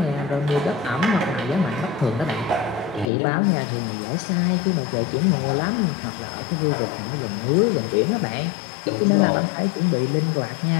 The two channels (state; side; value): drops out; right; at 3.1 s